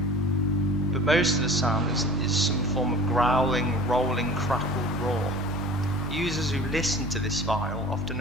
but most of the sound is some form of growling, rolling, crackled roar. Users who listen to this file often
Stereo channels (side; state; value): both; normal; correlation 0.41